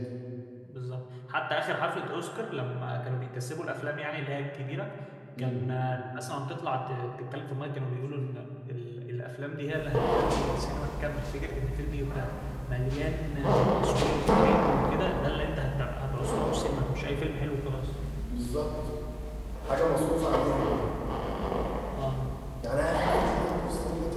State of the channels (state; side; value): identical; both; correlation 1.00